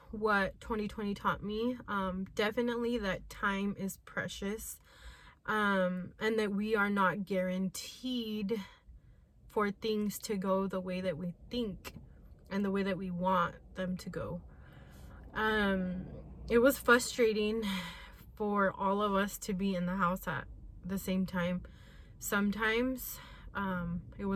what 2020 taught me. Definitely that time is precious, and that we are not guaranteed for things to go the way that we think and the way that we want them to go. It was frustrating for all of us to be in the house at the same time. Sometimes it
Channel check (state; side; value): identical; both; correlation 1.00